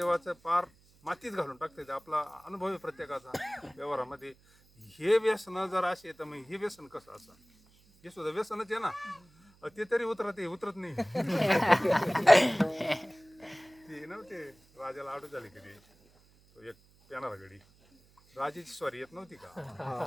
पार मातीत घालून टाकते. आपला अनुभव आहे प्रत्येकाचा व्यवहारामध्ये. हे व्यसन जर असे तर मग हे व्यसन कसं असं, हे सुद्धा व्यसनच आहे ना. ते तरी उतरत नाही. ते नव्हते राजाला आडू झाली कधी, तो एक पेनारा गडी, राजाची स्वारी येत नव्हती का,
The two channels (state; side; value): noise; right; hum, 30 dB below the sound